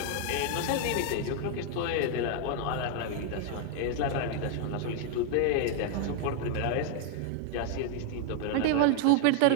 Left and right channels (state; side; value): different; both; correlation 0.00